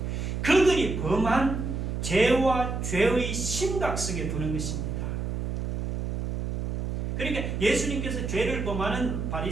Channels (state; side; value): noise; right; hum, 2 dB below the sound